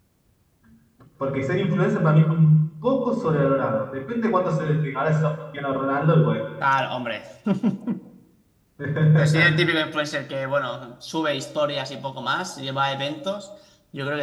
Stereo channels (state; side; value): identical; both; correlation 1.00